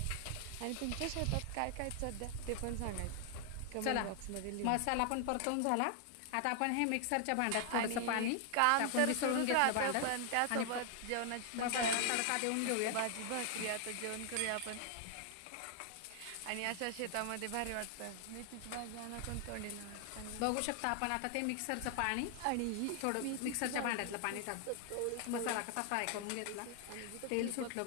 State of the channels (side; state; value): both; different; correlation 0.00